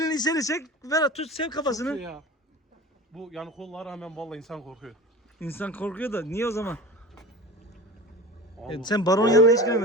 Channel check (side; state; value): both; normal; correlation 0.34